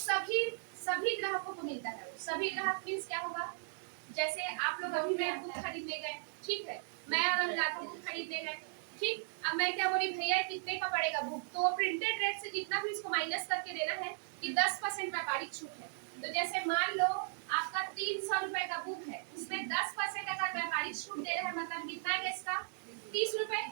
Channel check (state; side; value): silent; left; digital silence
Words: ग्राहकों को मिलता है। सभी ग्राहक मीन्स क्या होगा, जैसे आप लोग अभी मैं बुक खरीदने गए, ठीक है, मैं अगर जाता हूँ बुक खरीदने गए, ठीक, अब मैं क्या बोली, भैया कितने का पड़ेगा बुक, तो प्रिंटेड रेट से जितना भी इसको माइनस करके देना है कि 10% व्यापारिक छूट है। तो जैसे मान लो आपका 300 रुपए का बुक है, उसमें 10% अगर व्यापारिक छूट दे रहे हैं, मतलब कितना है इसका 30 रुपए,